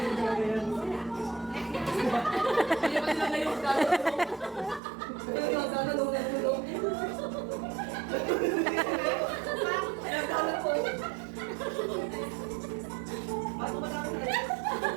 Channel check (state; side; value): drops out; left; at 4.8 s